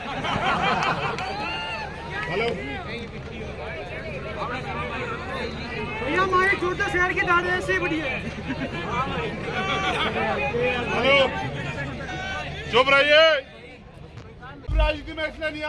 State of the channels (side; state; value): both; identical; correlation 1.00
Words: हेलो भैया, हमारे छोटे शहर की दाढ़ी ऐसे बढ़िया है। हेलो, चुप रहिए। राजनीति में इसलिए नहीं